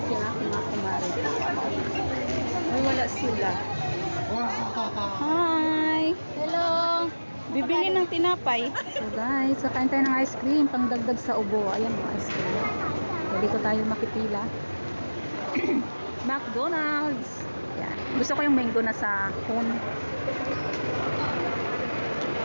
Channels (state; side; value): inverted; both; correlation -1.00